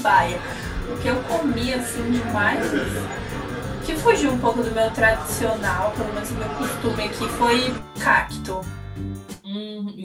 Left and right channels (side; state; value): both; identical; correlation 1.00